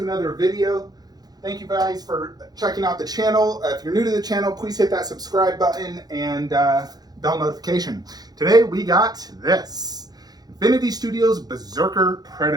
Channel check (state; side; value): late; left; 0.19 ms